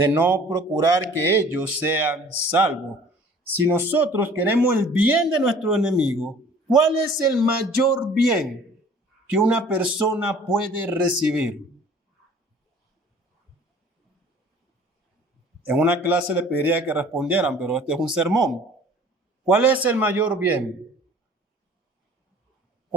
no procurar que ellos sean salvos. Si nosotros queremos el bien de nuestro enemigo, ¿cuál es el mayor bien que una persona puede recibir? En una clase le pediría que respondieran, pero este es un sermón. ¿Cuál es el mayor bien?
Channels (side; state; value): both; normal; correlation 0.50